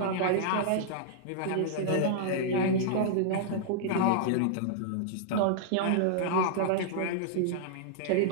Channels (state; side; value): different; both; correlation -0.01